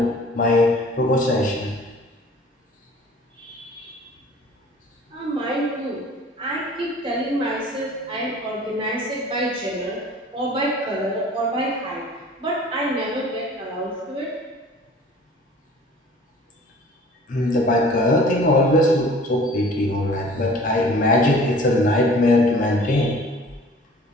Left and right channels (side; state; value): both; normal; correlation 0.48